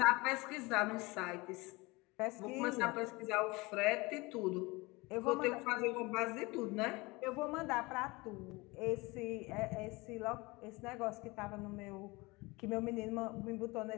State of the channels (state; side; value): quieter; right; 24.0 dB